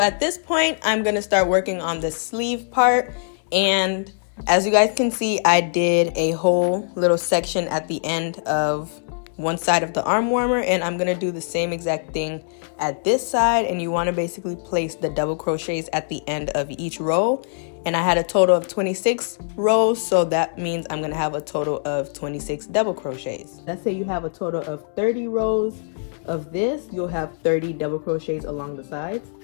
this point I'm gonna start working on the sleeve part, and as you guys can see, I did a whole little section at the end of one side of the arm warmer, and I'm gonna do the same exact thing at this side. And you want to basically place the double crochets at the end of each row. And I had a total of 26 rows, so that means I'm gonna have a total of 26 double crochets. Let's say you have a total of 30 rows of this, you'll have 30 double crochets along the sides.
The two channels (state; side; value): silent; right; digital silence